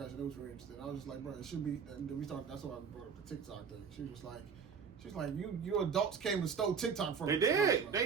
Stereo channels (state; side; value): quieter; left; 6.3 dB